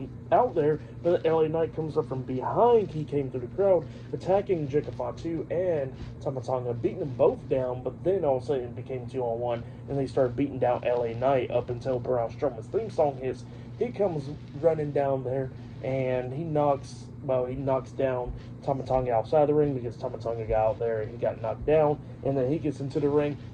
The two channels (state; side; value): identical; both; correlation 1.00